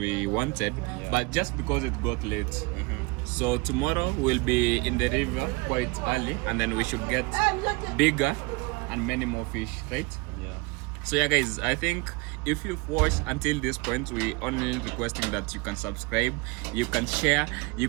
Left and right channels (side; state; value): left; quieter; 26.3 dB